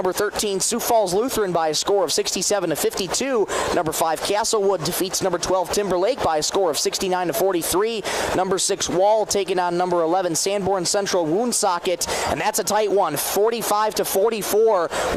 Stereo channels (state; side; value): identical; both; correlation 1.00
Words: 13 Sioux Falls Lutheran by a score of 67-52. Number 5 Castlewood defeats number 12 Timberlake by a score of 69-43. Number 6 Wall taking on number 11 Sanborn Central Woonsocket, and that's a tight one,